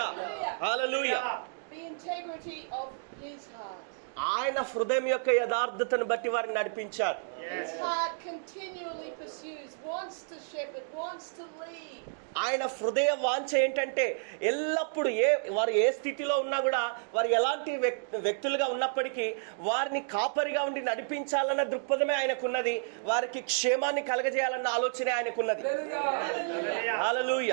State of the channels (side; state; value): left; silent; digital silence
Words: hallelujah. The integrity of his heart. ఆయన హృదయం యొక్క యథార్థతను బట్టి వారిని నడిపించారు. His heart continually pursues, wants to shepherd, wants to lead. ఆయన హృదయ వాంఛ ఏంటంటే ఎల్లప్పుడూ వారు ఏ స్థితిలో ఉన్నా కూడా వారు ఎలాంటి వ్యక్తులుగా ఉన్నప్పటికీ వారిని కాపరిగా ఉండి నడిపించాలన్న దృక్పథమే ఆయనకున్నది. వారికి క్షేమాన్ని కలగజేయాలన్న ఆలోచనే ఆయనకున్నది.